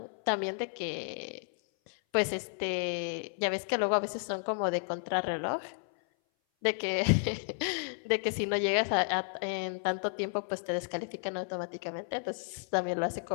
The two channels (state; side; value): silent; right; 56 dB below the other